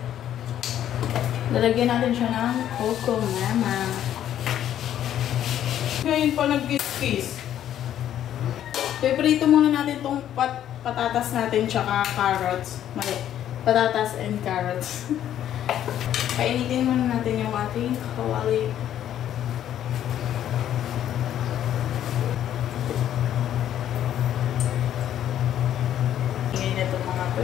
Lalagyan natin siya ng coco mama. Ngayon pa nag-kiss. Piprito muna natin itong patatas natin tsaka carrots. Mali. Patatas and carrots. Painitin muna natin yung ating kawali. Ngayon ito mga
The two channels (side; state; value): right; quieter; 11.0 dB